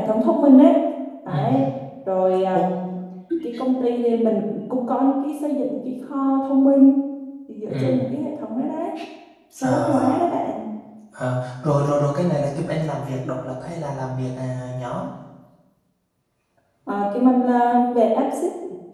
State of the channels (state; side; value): identical; both; correlation 1.00